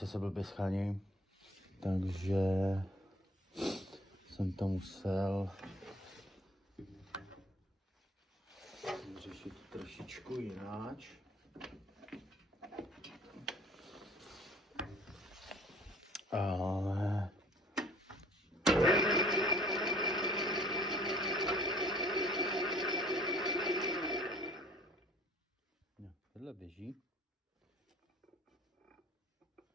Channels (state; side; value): normal; both; correlation 0.54